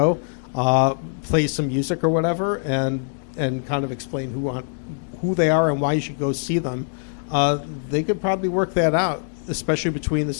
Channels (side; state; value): right; silent; digital silence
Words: play some music or whatever, and kind of explain who they are and why you should go see them, they could probably work that out, especially between the